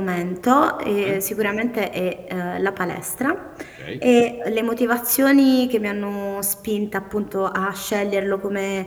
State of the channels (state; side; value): identical; both; correlation 1.00